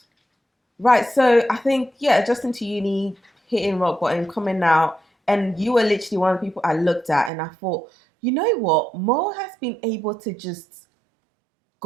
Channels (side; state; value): left; drops out; at 7.3 s